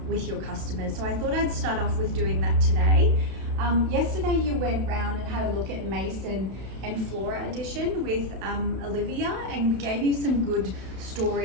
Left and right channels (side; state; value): left; late; 31 ms